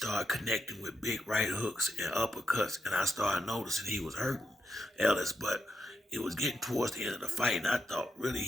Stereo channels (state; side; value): normal; both; correlation 0.84